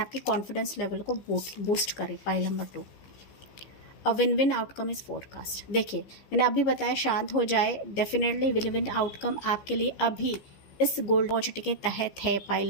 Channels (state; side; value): late; right; 15 ms